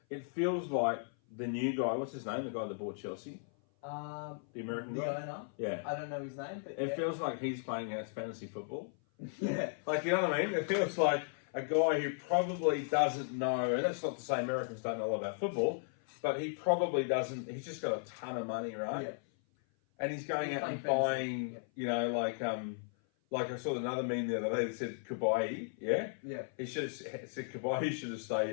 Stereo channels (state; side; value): silent; right; 54 dB below the other